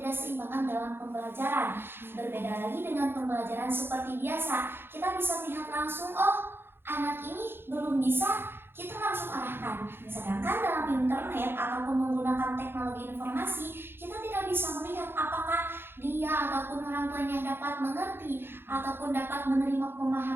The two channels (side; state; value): left; late; 0.11 ms